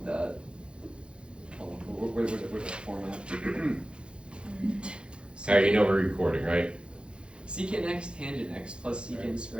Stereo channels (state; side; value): late; left; 0.055 ms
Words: that hold on, where's the format? Harry, you know we're recording, right? Secant x tangent x plus secant